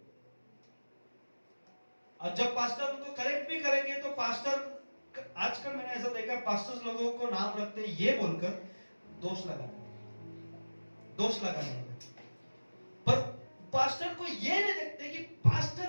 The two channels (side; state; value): both; inverted; correlation -1.00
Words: और जब पास्टर उनको करेक्ट भी करेंगे तो पास्टर, आजकल मैंने ऐसा देखा पास्टर्स लोगों को नाम रखते हैं ये बोलकर दोष लगाते, दोष लगाने, पर पास्टर को ये नहीं देखते कि